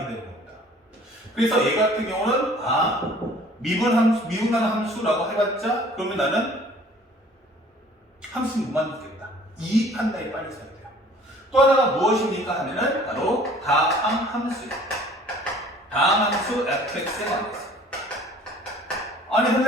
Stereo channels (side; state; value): both; normal; correlation 0.52